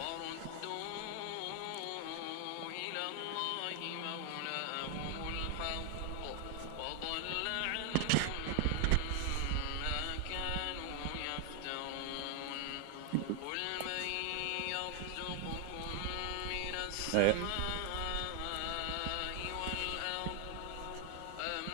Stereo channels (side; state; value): both; different; correlation 0.00